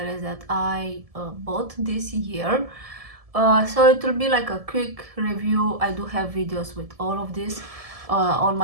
that I bought this year. So it will be like a quick review. I do have videos with all of this on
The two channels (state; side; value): late; left; 1.7 ms